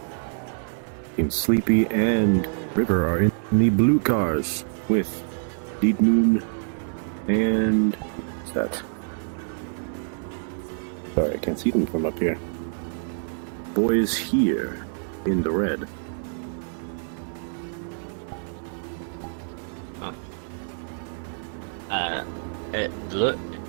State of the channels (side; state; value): left; silent; digital silence